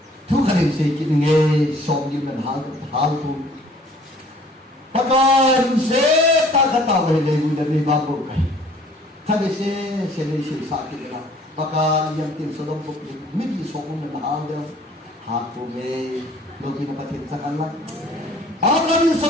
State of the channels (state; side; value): normal; both; correlation 0.55